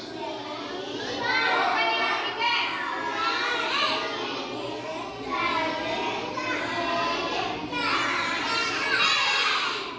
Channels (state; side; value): identical; both; correlation 1.00